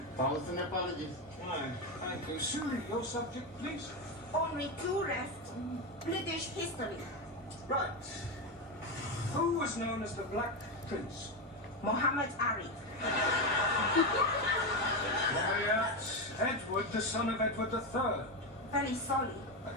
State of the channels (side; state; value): both; normal; correlation 0.12